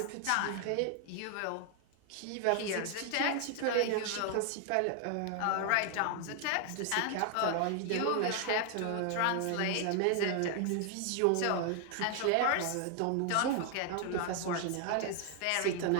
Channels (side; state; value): both; different; correlation 0.00